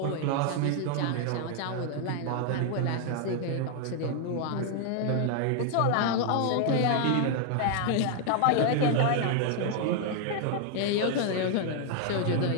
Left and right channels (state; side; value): different; both; correlation 0.00